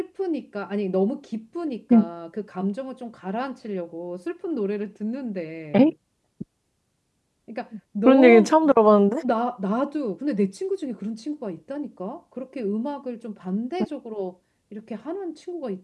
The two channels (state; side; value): identical; both; correlation 1.00